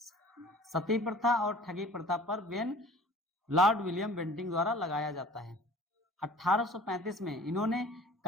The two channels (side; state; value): both; normal; correlation 0.47